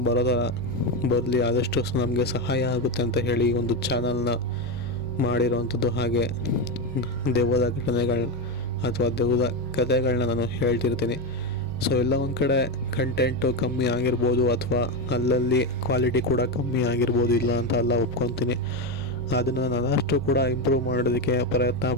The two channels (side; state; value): right; noise; hum, 16 dB below the sound